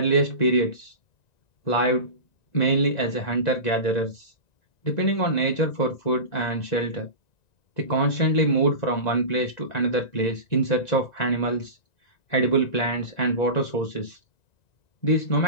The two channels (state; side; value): late; right; 1.9 ms